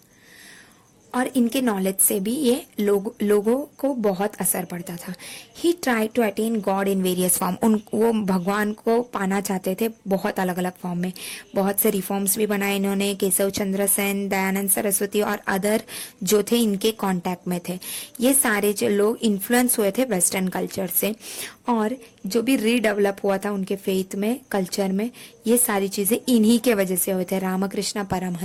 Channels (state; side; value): identical; both; correlation 1.00